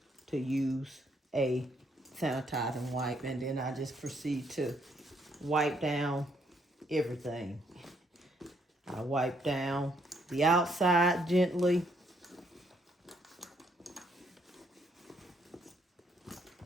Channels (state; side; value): normal; both; correlation 0.71